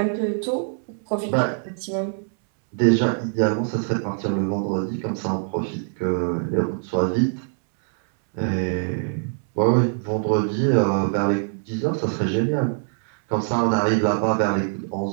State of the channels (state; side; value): silent; left; 63 dB below the other